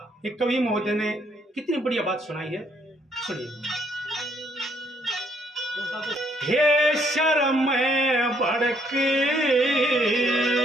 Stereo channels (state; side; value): normal; both; correlation 0.69